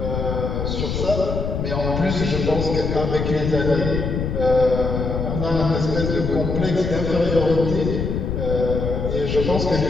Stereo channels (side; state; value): left; noise; rumble, 2 dB below the sound